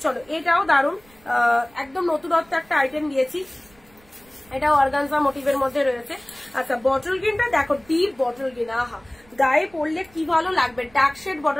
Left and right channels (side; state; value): right; noise; rumble, 29 dB below the sound